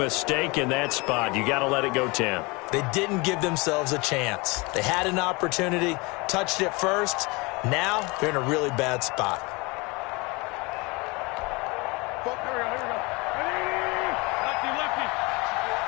in that spot. You got to let it go, Tim. They didn't give themselves a chance. They had an opportunity, touched it first. Now they're in a really bad spot.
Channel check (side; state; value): right; quieter; 26.4 dB